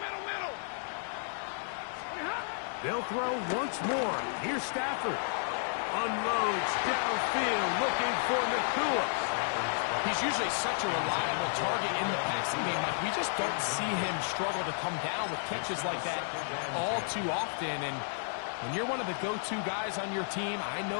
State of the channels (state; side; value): silent; right; digital silence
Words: They'll throw once more. Here's Stafford. Unloads downfield, looking for Nakua. He's usually such a reliable target in the passing game. Like, we just don't see him struggle to come down with catches like that all too often. And when you're one of the go-to guys on your team, I know